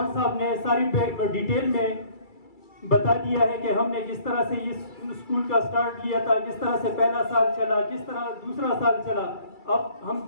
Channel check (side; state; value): right; late; 2.3 ms